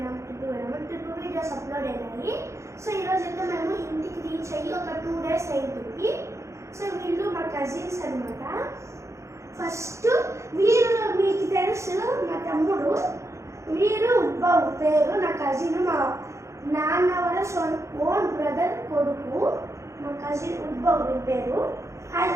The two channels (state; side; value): late; left; 0.14 ms